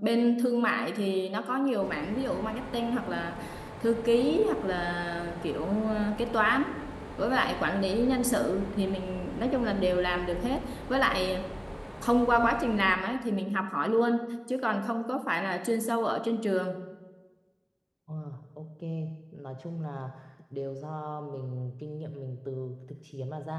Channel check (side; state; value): both; identical; correlation 1.00